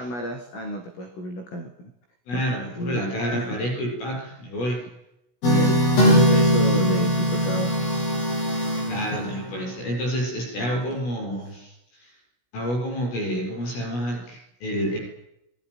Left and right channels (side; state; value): right; late; 16 ms